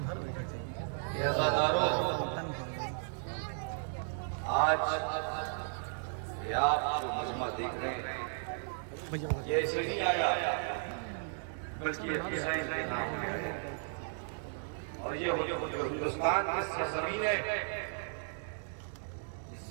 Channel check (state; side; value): silent; left; 54 dB below the other